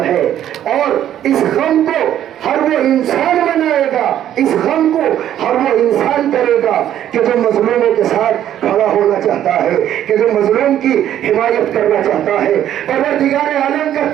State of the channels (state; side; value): quieter; left; 11.2 dB